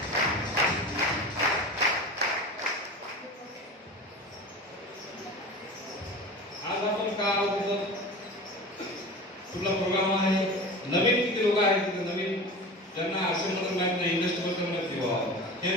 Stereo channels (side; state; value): both; normal; correlation 0.33